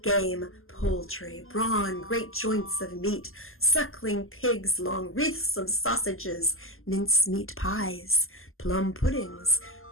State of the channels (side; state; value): right; late; 0.61 ms